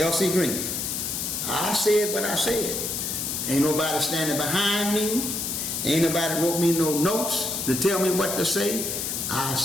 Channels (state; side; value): noise; left; hiss, 3 dB below the sound